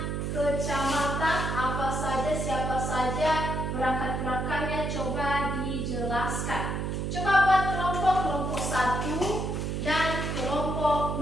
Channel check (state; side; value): noise; right; hum, 2 dB below the sound